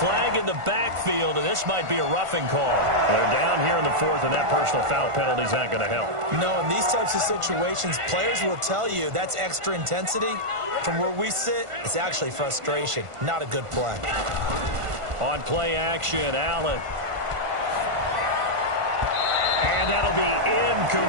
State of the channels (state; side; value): late; left; 1.5 ms